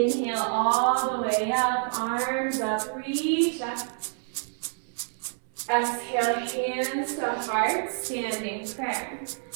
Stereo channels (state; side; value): silent; left; 60 dB below the other